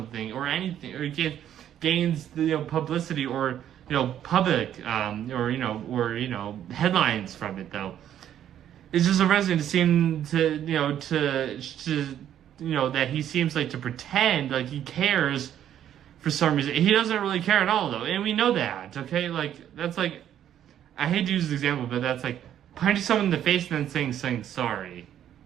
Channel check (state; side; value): quieter; left; 10.6 dB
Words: or anything, or he gains, you know, publicity, or, you know, public, or headlines from it, though. It's just arresting to seem to, that he seems like to pretend like he cares for some reason. He doesn't really care at all, though, and we know that, okay? Like, that's like, I hate to use this example, but that's like punching someone in the face and then saying sorry.